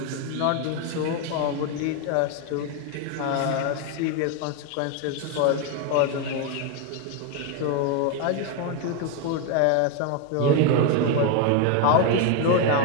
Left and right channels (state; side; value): different; both; correlation 0.01